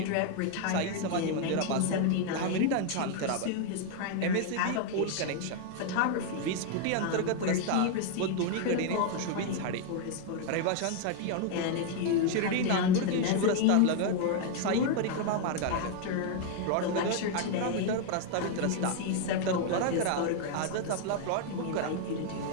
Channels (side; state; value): both; different; correlation 0.00